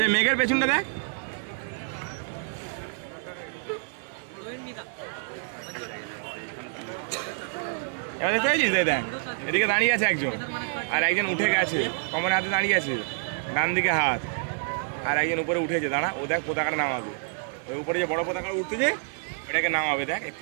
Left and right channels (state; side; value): silent; left; 56 dB below the other